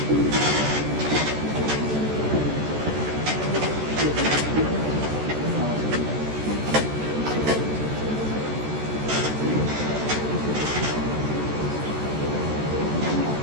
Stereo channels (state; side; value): late; left; 14 ms